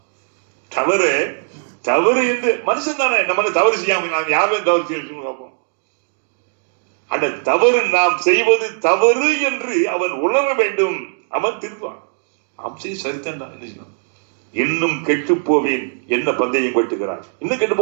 தவறு என்று மனுஷன் தானே, நம்ம தவறு செய்யாம நாம் யாரும் தவறு செய்ய பார்ப்போம். அந்த தவறு நாம் செய்வது தவறு என்று அவன் உணர வேண்டும். அவன் திருவான். நாம் செய்ய சரித்தான் என்ன செய்யணும். இன்னும் கெட்டு போவேன் என்ன பந்தயம் கட்டுகிறான், இன்னும் கெட்டு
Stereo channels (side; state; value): left; silent; 60 dB below the other